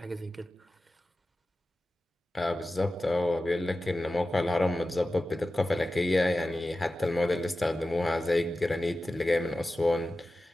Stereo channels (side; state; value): both; normal; correlation 0.94